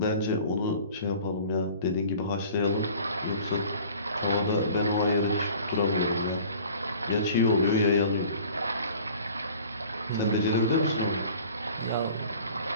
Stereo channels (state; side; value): inverted; both; correlation -0.47